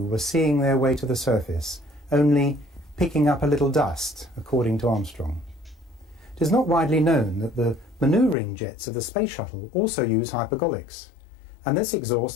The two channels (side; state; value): right; drops out; at 8.3 s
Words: were seeing their way to the surface, only picking up a little dust, according to Armstrong. It is not widely known that the manoeuvring jets of the space shuttle also use hypergolics, and this